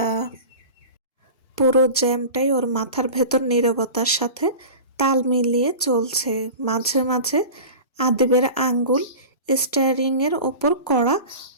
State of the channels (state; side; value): inverted; both; correlation -0.34